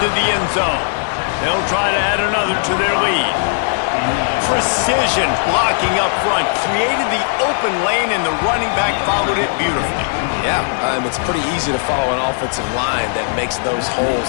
the end zone. They'll try to add another to their lead. Precision blocking up front. Created the open lane, and the running back followed it beautifully. Yeah, it's pretty easy to follow an offensive line that makes those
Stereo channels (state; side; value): silent; right; digital silence